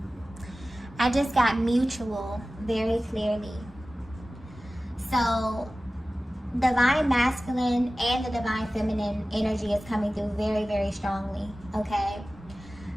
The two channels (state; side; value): normal; both; correlation 0.96